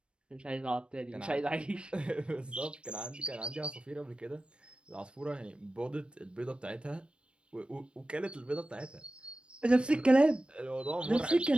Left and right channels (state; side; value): late; left; 0.057 ms